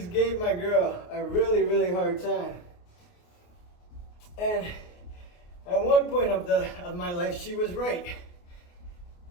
gave my girl a really hard time. And at one point of my life, she was right.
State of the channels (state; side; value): late; right; 28 ms